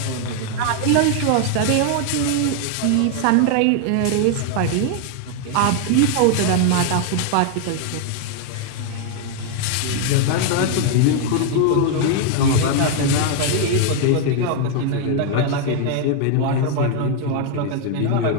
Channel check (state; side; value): different; both; correlation 0.00